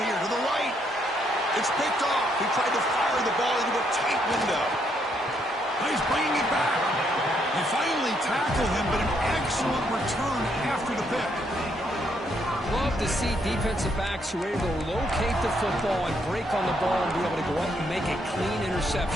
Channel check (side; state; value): both; normal; correlation 0.74